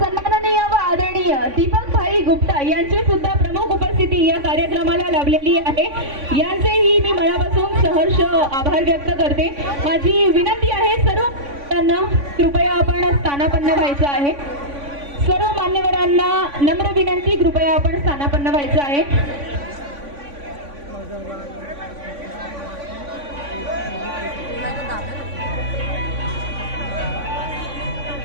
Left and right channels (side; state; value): left; late; 3.5 ms